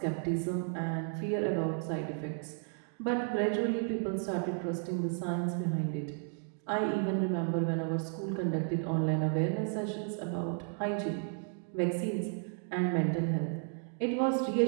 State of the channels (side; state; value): left; silent; 56 dB below the other